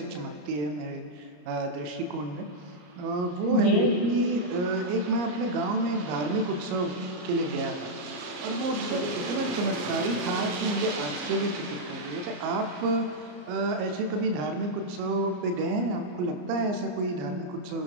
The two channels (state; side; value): late; left; 34 ms